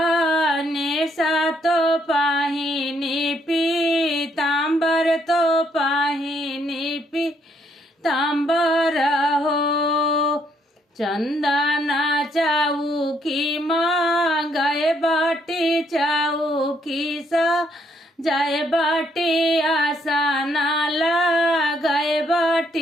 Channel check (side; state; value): both; normal; correlation 0.71